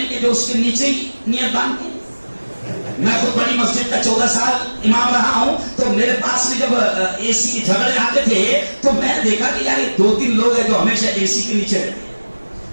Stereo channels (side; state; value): both; inverted; correlation -1.00